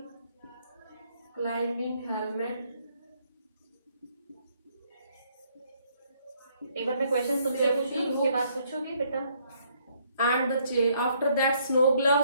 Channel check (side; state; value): both; inverted; correlation -0.68